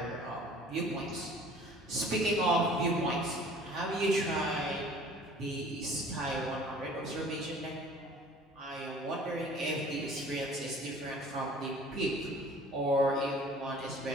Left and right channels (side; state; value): both; normal; correlation 0.49